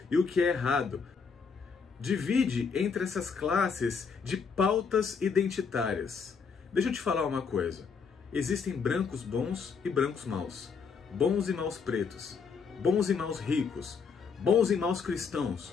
e o que é errado. Divide entre essas classes de pautas identitárias. Deixa eu te falar uma coisa. Existem brancos bons e brancos maus. Bons e maus pretos. Bons e maus ricos. Bons e maus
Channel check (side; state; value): right; quieter; 5.7 dB